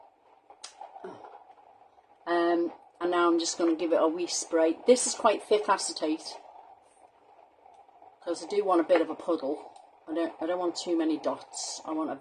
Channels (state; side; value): identical; both; correlation 1.00